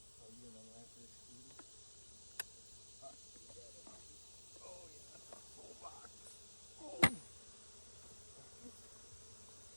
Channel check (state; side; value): inverted; both; correlation -1.00